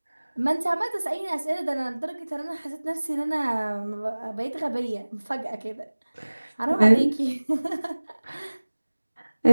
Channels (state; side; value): inverted; both; correlation -1.00